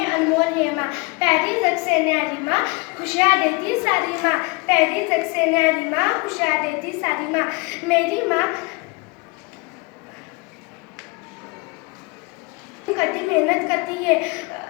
अनमोल है माँ, पैरी तक से न्यारी माँ, खुशियाँ देती सारी माँ, पैरी तक से न्यारी माँ, खुशियाँ देती सारी माँ, मेरी माँ कदी मेहनत करती है,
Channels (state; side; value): quieter; right; 27.8 dB